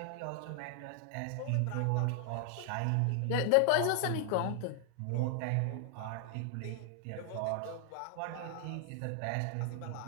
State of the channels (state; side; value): different; both; correlation 0.00